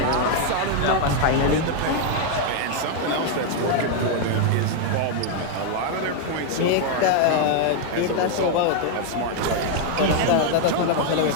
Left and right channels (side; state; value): both; different; correlation 0.00